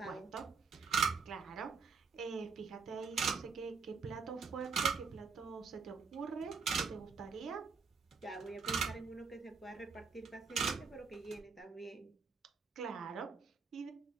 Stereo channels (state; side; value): quieter; left; 5.4 dB